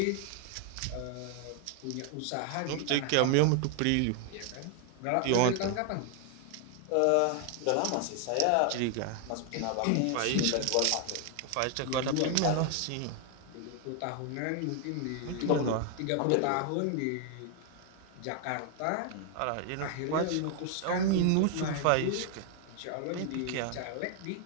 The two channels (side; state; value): both; different; correlation 0.00